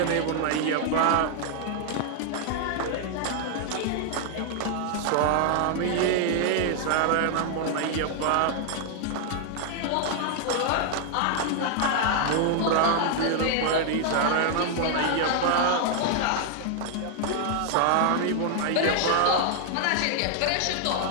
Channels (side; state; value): both; different; correlation 0.00